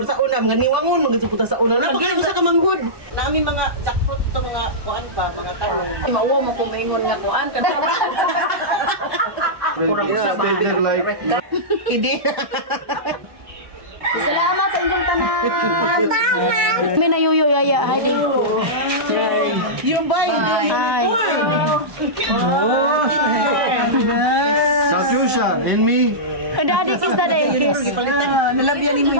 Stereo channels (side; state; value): left; late; 1.2 ms